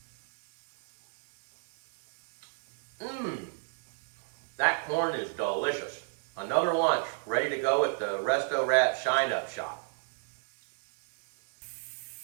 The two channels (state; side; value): silent; left; 56 dB below the other